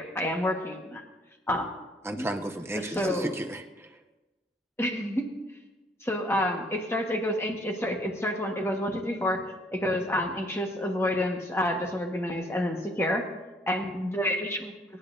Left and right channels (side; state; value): both; normal; correlation 0.62